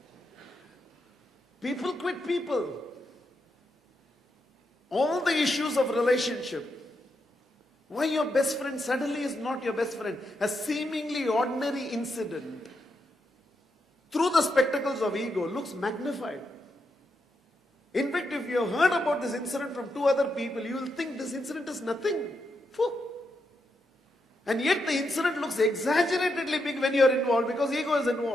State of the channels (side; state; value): both; normal; correlation 0.83